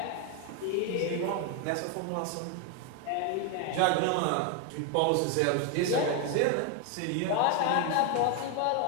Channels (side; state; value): both; different; correlation 0.01